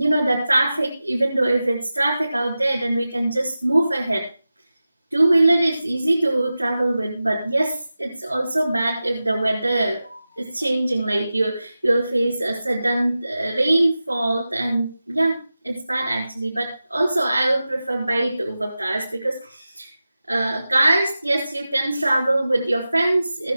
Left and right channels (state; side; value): inverted; both; correlation -0.94